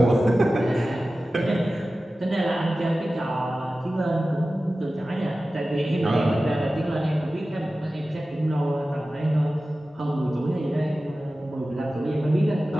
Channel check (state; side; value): normal; both; correlation 0.95